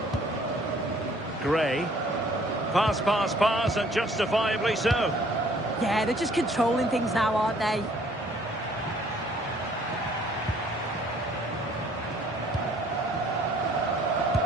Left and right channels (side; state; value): both; normal; correlation 0.59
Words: Gray. Pass, pass, pass, and justifiably so. Yeah, they're just controlling things now, aren't they?